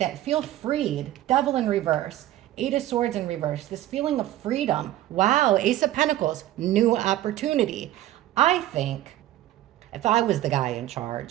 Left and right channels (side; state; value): left; quieter; 14.0 dB